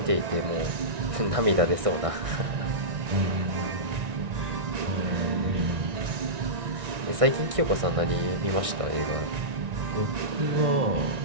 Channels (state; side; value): late; left; 1.6 ms